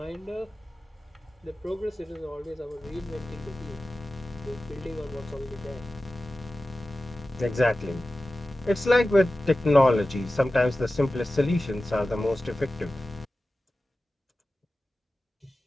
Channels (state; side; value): normal; both; correlation 0.95